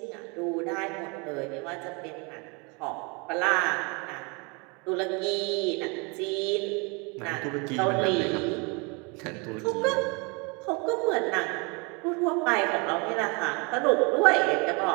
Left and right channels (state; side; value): quieter; left; 30.6 dB